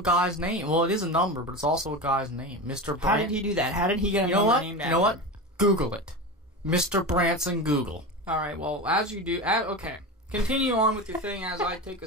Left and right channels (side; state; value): both; normal; correlation 0.25